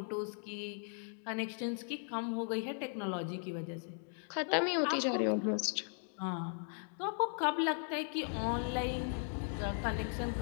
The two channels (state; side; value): silent; right; 53 dB below the other